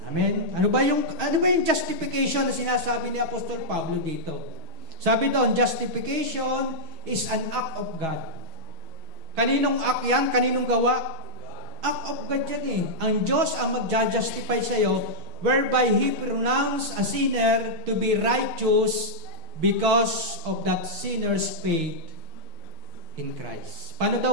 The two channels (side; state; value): left; late; 6.3 ms